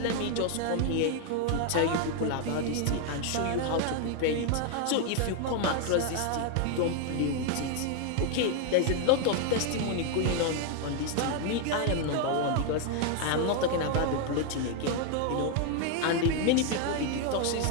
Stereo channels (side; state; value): both; different; correlation 0.00